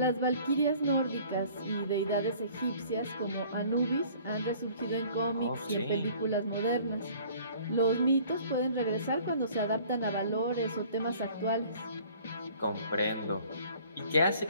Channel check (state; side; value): inverted; both; correlation -0.52